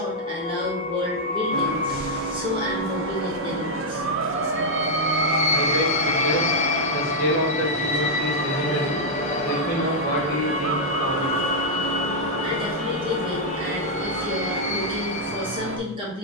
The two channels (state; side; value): normal; both; correlation -0.04